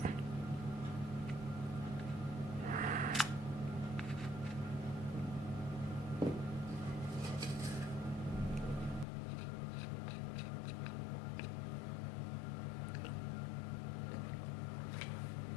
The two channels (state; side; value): drops out; right; at 9.1 s